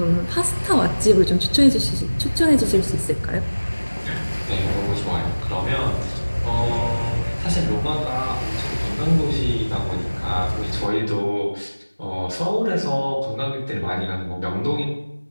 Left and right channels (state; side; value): inverted; both; correlation -1.00